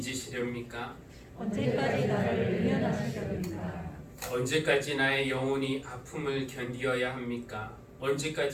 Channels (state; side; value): identical; both; correlation 1.00